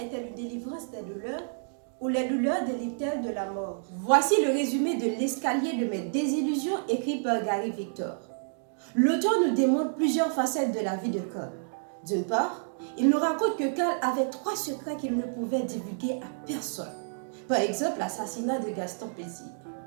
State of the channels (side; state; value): left; silent; digital silence